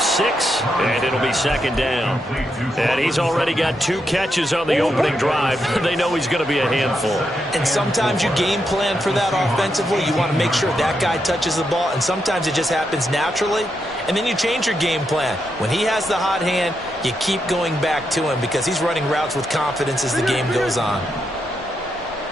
6, and it'll be second down. And he's already got 2 catches on the opening drive. They know he's going to be a handful. And sometimes you game plan for that offensively. You want to make sure that guy touches the ball, and sometimes it just happens naturally. And then you change your game plan. When he has the hot hand, you keep going back to him because he's running routes with confidence as the game goes on.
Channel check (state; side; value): normal; both; correlation 0.83